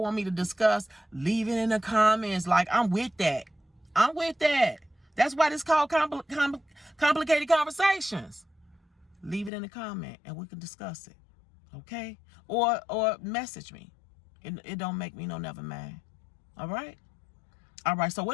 want me to discuss, leave it in the comments. Like, I'm with that. I'm with that. That's why it's called complicated conversations. Leave it in the comment and we can discuss it. Okay? Or message me. It don't make me no never mad. All right? All right, so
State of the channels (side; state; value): right; drops out; at 9.5 s